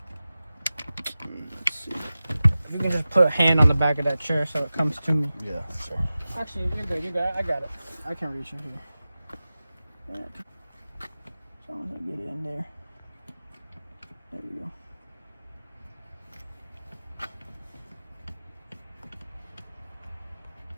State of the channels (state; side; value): inverted; both; correlation -0.96